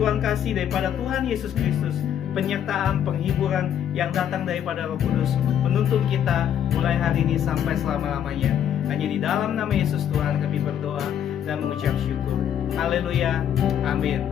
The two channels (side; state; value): right; quieter; 9.6 dB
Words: kasih daripada Tuhan Yesus Kristus, penyertaan, penghiburan yang datang daripada Roh Kudus menuntun kita mulai hari ini sampai selama-lamanya. Hanya di dalam nama Yesus Tuhan kami berdoa dan mengucap syukur. Haleluya. Amin.